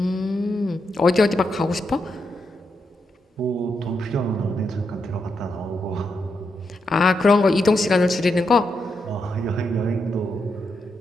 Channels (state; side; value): normal; both; correlation 0.83